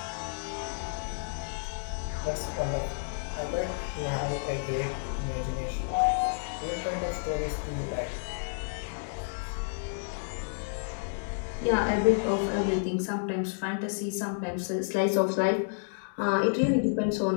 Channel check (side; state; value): right; silent; digital silence